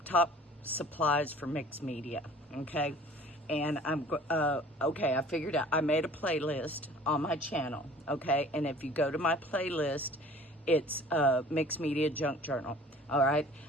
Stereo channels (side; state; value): both; normal; correlation 0.48